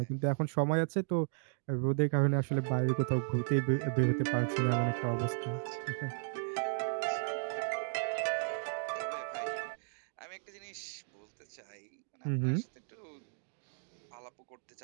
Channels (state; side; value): silent; left; digital silence